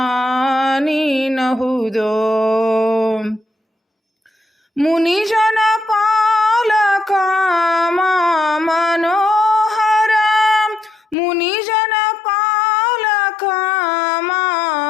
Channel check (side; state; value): right; drops out; at 11.2 s